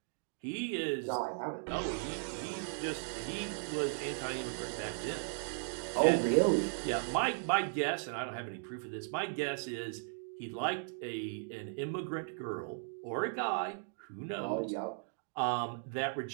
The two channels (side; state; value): left; silent; digital silence